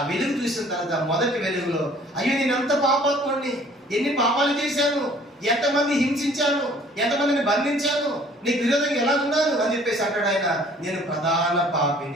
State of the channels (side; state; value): both; normal; correlation 0.55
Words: వెలుగు చూసిన తర్వాత మొదటి వెలుగులో అయ్యో నేను ఎంత పాపాత్ముడిని, ఎన్ని పాపాలు చేశాను, ఎంతమంది హింసించాను, ఎంతమందిని బంధించాను, నీకు విరోధంగా ఎలా ఉన్నాను అని చెప్పేసి అంటాడు ఆయన నేను ప్రధాన